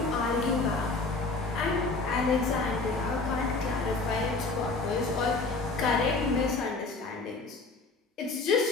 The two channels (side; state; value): right; quieter; 3.7 dB